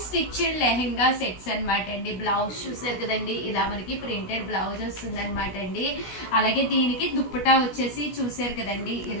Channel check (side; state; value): right; late; 16 ms